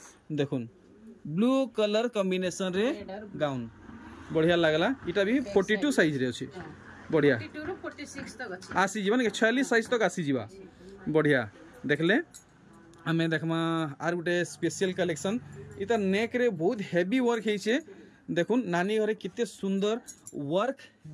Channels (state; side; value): identical; both; correlation 1.00